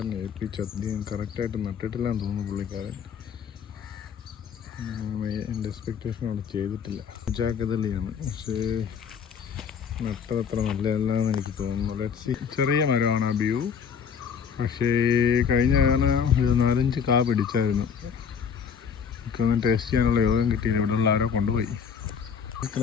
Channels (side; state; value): right; quieter; 7.0 dB